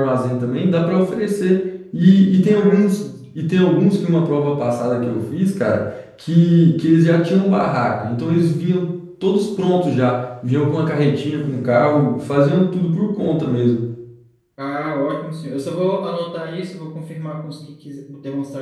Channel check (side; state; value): both; identical; correlation 1.00